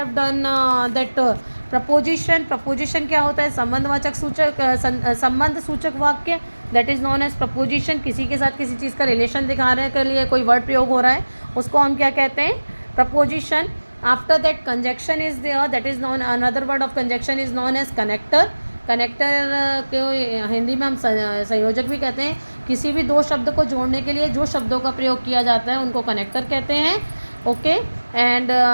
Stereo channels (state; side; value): inverted; both; correlation -1.00